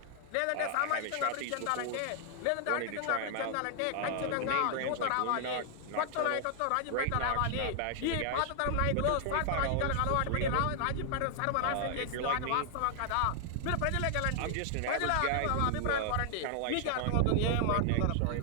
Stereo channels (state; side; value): different; both; correlation 0.00